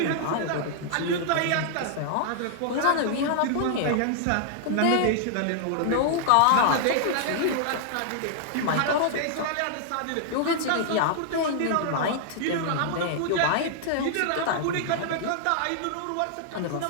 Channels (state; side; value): different; both; correlation -0.01